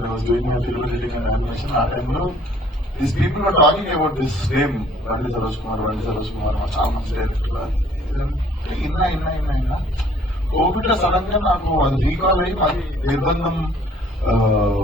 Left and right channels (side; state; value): both; normal; correlation 0.58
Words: I was doing my film editing and animation, ఆ టైంలో these people are talking about this name Bandi Saroj Kumar చాలా మంచి డైరెక్టర్. ఇన్నా కోవిడ్ లో సడన్ గా నాకు అది రీకాల్ అయ్యి మాది నిర్బంధం